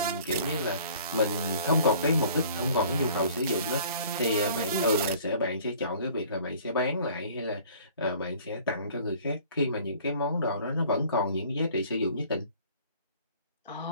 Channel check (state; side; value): inverted; both; correlation -0.51